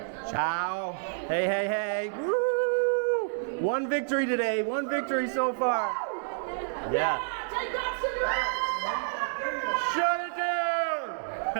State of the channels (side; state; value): left; silent; 58 dB below the other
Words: Ciao. Hey. Woo! One victory today. One victory so far. Yeah. Shut it down!